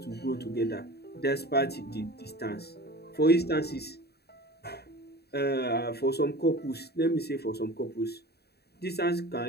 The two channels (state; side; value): late; right; 0.47 ms